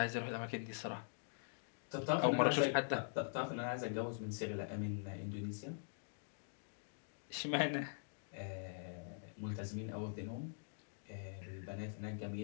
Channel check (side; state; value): right; silent; digital silence